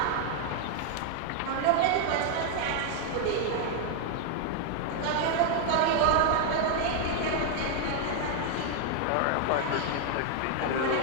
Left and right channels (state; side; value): different; both; correlation 0.00